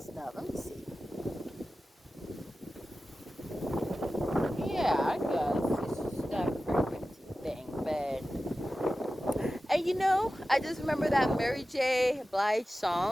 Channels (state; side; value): normal; both; correlation 0.94